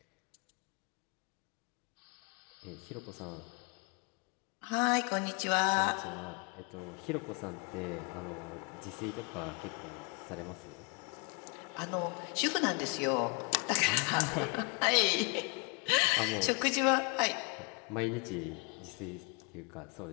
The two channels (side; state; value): right; quieter; 33.0 dB